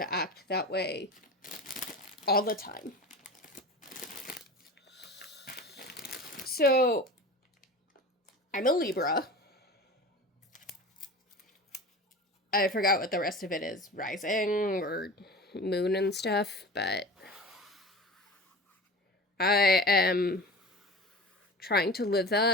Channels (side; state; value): both; normal; correlation 0.34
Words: act that way all the time. So, I'm a Libra. I forgot what the rest of it is, rising or moon and stuff, but I am trying to live